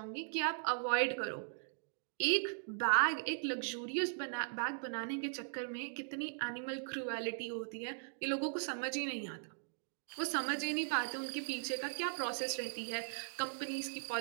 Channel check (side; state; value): left; silent; digital silence